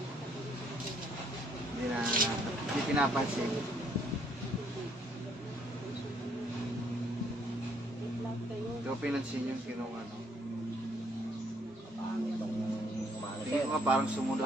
Hindi pinapansin. Ito pinansin yung kinong ano. Tingin ko nga parang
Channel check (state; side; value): normal; both; correlation 0.67